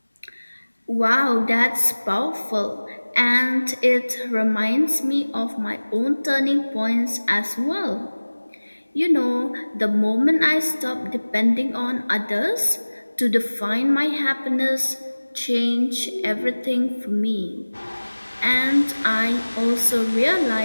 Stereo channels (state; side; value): inverted; both; correlation -1.00